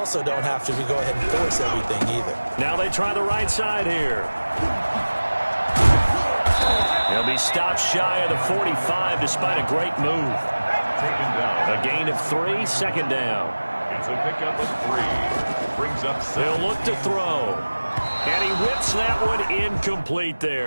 don't have to go ahead and force everything either. Now they try the right side here. He'll be stopped shy of the 45 despite a great move. Taken down. A gain of 3, 2nd down. It's a pickup of 3. Brings up 7. They'll look to throw. And he whips that one incomplete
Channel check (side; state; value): both; inverted; correlation -1.00